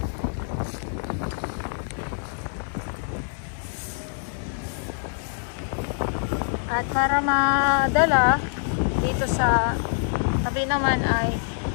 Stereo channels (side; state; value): right; silent; digital silence